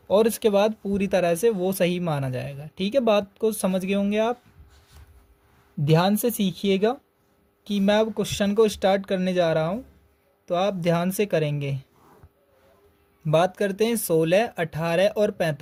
और इसके बाद पूरी तरह से वो सही माना जाएगा, ठीक है। बात को समझ गए होंगे आप। ध्यान से सीखिएगा कि मैं अब क्वेश्चन को स्टार्ट करने जा रहा हूँ, तो आप ध्यान से करेंगे। बात करते हैं 16, 18 और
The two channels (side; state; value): both; identical; correlation 1.00